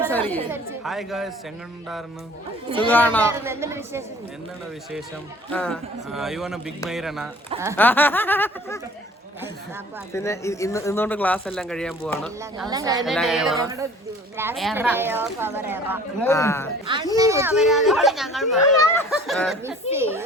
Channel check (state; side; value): normal; both; correlation 0.49